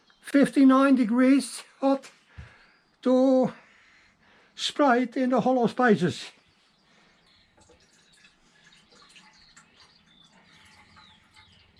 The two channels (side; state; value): both; identical; correlation 1.00